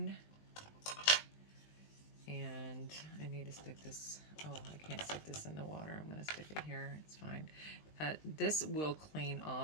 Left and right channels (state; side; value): late; right; 20 ms